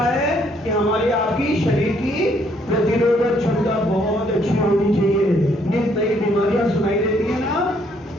है कि हमारी आपकी शरीर की प्रतिरोधक क्षमता बहुत अच्छी होनी चाहिए। नित नई बीमारियां सुनाई देती है ना,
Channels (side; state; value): both; normal; correlation 0.68